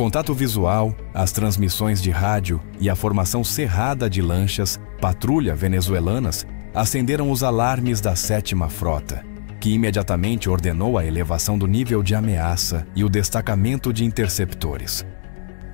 visual, as transmissões de rádio e a formação cerrada de lanchas patrulha venezuelanas acenderam os alarmes da 7ª Frota, que imediatamente ordenou a elevação do nível de ameaça e o destacamento de interceptores.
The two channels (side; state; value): right; silent; 65 dB below the other